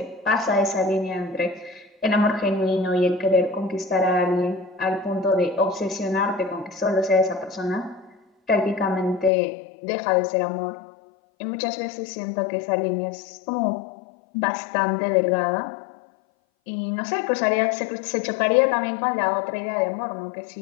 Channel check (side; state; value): right; drops out; at 9.3 s